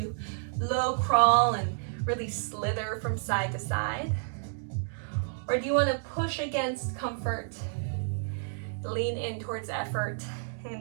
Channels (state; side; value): silent; left; digital silence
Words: low crawl and really slither from side to side? Or do you want to push against comfort, lean in towards effort, and